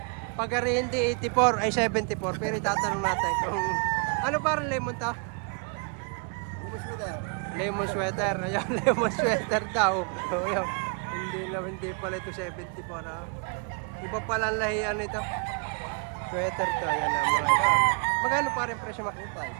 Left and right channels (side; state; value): left; quieter; 38.2 dB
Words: Pag hindi 84 ay 74. Pero itatanong natin kung ano parang lemon to? Lemon sweater. Lemon sweater. Ayan, lemon sweater daw. Oh, yan. Hindi pala ito 74 ha. Iba pala ang lahian ito. Sweater to. Ayan mga ito. Magkano pa rin presyo?